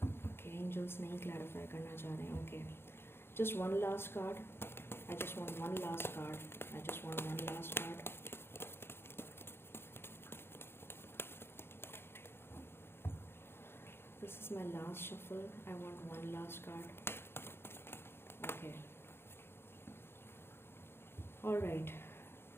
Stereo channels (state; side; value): late; right; 0.11 ms